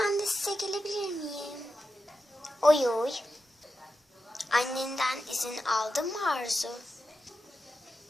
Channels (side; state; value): both; normal; correlation 0.90